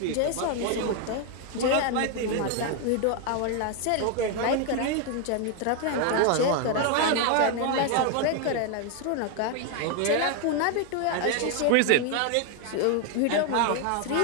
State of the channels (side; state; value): both; different; correlation 0.01